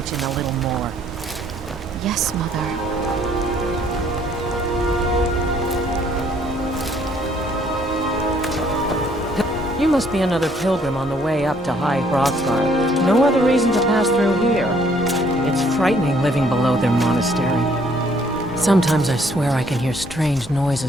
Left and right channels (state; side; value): normal; both; correlation 0.63